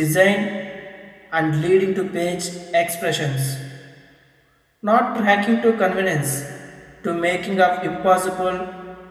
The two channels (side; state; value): both; identical; correlation 1.00